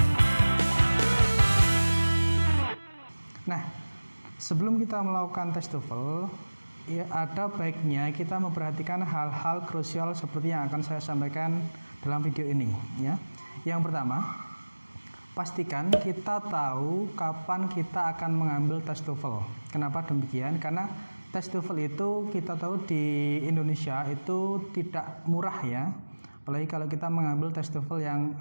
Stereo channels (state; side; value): inverted; both; correlation -1.00